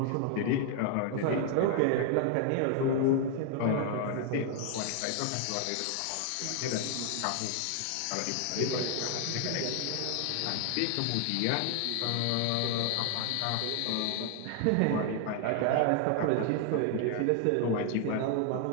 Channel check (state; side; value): different; both; correlation 0.00